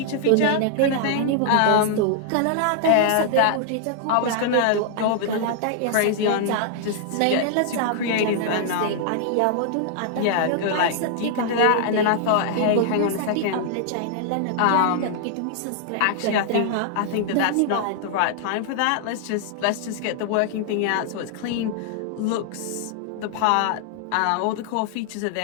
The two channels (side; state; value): both; different; correlation -0.01